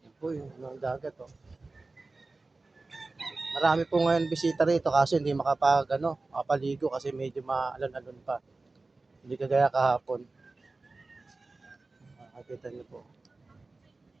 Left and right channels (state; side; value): quieter; left; 3.4 dB